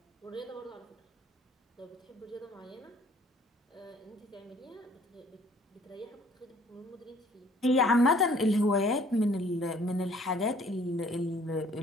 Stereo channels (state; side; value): normal; both; correlation 0.57